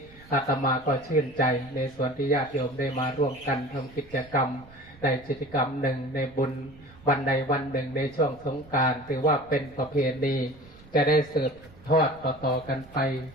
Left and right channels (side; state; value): right; noise; rumble, 23 dB below the sound